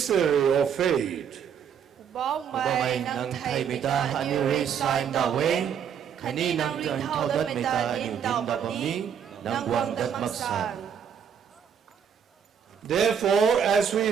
of faith. Bóng mày nâng thầy mày ta hạ như rê sai đào quên, khả ni nâng trần thao đất mày ta điều tin đọc bầm ní, nâng quang đất mắc sàn. Therefore, as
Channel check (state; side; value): quieter; left; 7.8 dB